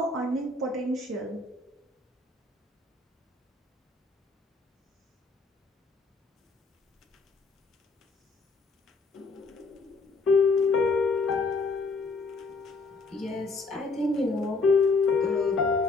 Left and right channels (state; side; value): quieter; right; 3.8 dB